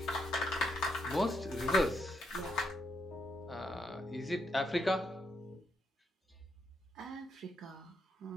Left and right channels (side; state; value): both; normal; correlation 0.79